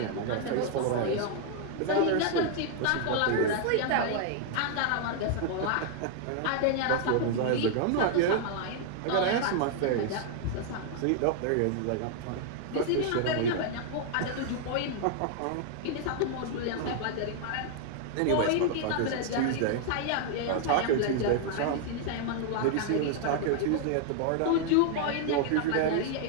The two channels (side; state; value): both; different; correlation 0.00